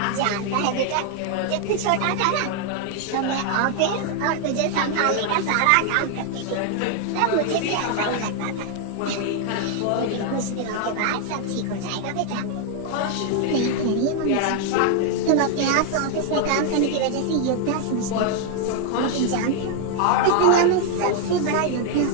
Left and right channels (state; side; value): different; both; correlation 0.00